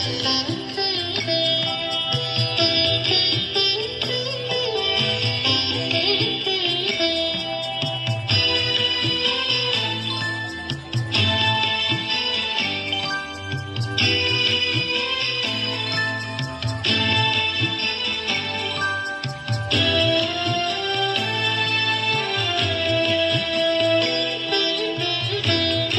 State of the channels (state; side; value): identical; both; correlation 1.00